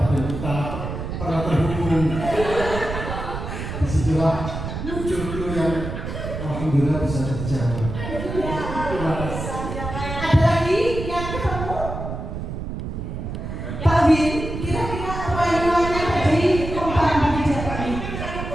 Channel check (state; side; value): noise; right; rumble, 6 dB below the sound